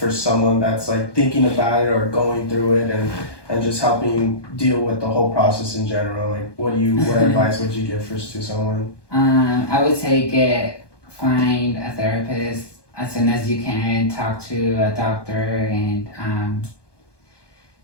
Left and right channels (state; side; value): late; right; 1.2 ms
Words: someone that's like thinking about it or going through it and just helping deal with the whole process in general? Like, what advice would you give to someone? I would say find a therapist as soon as you can. Talk to a doctor, and